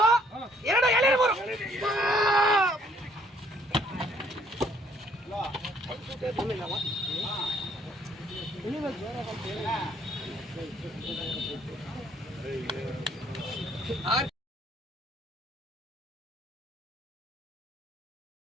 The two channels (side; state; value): both; normal; correlation 0.64